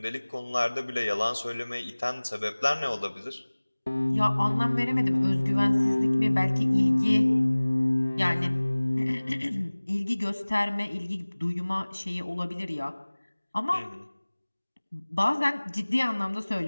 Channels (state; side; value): inverted; both; correlation -1.00